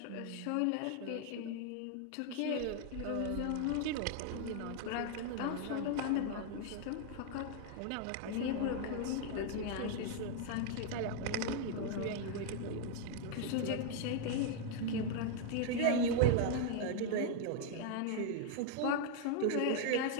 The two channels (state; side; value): different; both; correlation 0.00